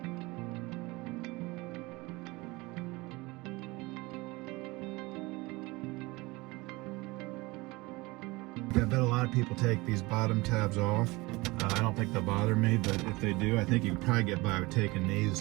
I bet a lot of people take these bottom tabs off. I don't think they'll bother me, but if they do, I think you can probably get by with taking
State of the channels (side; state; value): left; quieter; 22.9 dB